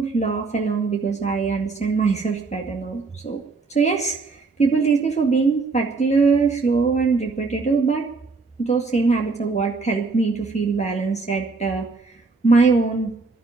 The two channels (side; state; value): left; quieter; 4.1 dB